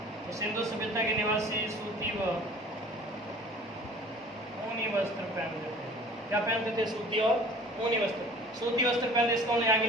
तो सिंधु सभ्यता के निवासी सूती व ऊनी वस्त्र पहनते थे। क्या पहनते थे? सूती और ऊनी वस्त्र। सूती वस्त्र पहनते इसका यहाँ के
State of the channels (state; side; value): normal; both; correlation 0.47